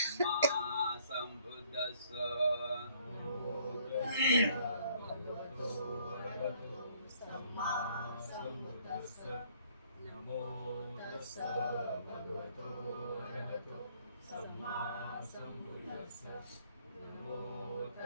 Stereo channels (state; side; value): inverted; both; correlation -0.63